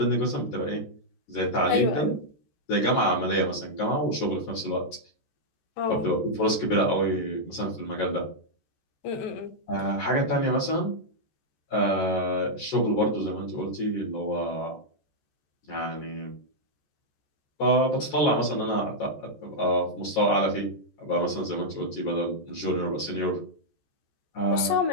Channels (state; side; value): late; right; 14 ms